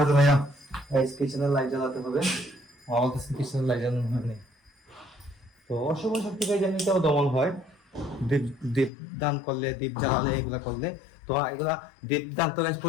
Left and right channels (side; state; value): right; drops out; at 8.9 s